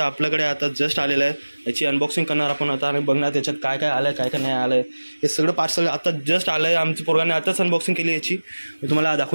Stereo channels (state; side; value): inverted; both; correlation -1.00